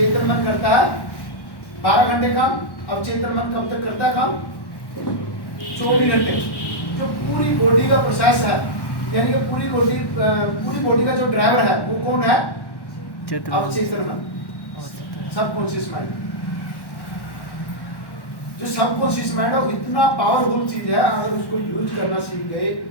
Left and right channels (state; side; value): late; right; 1.1 ms